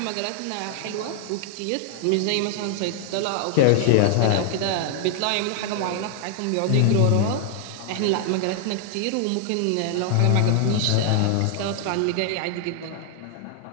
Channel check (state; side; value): different; both; correlation 0.00